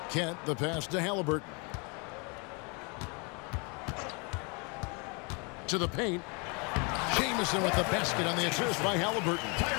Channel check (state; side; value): quieter; right; 32.3 dB